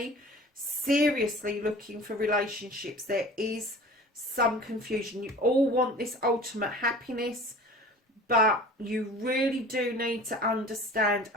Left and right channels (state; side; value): normal; both; correlation 0.42